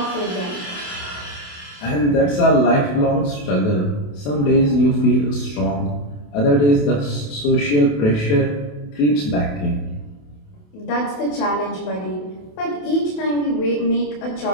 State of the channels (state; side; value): late; right; 28 ms